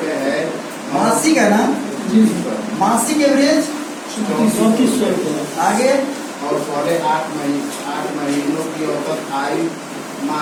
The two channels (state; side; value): identical; both; correlation 1.00